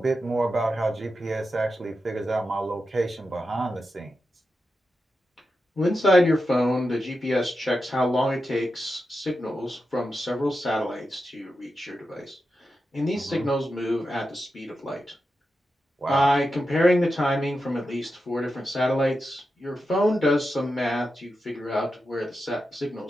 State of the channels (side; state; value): both; normal; correlation 0.89